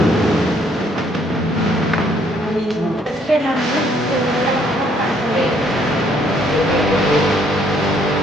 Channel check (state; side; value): normal; both; correlation 0.66